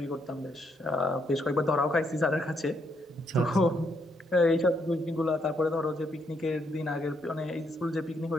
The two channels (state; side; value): normal; both; correlation 0.75